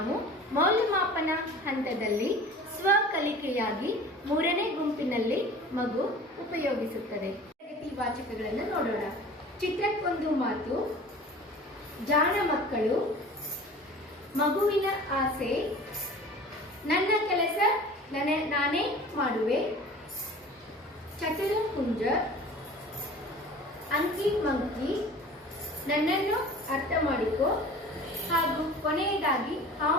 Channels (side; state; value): both; normal; correlation 0.42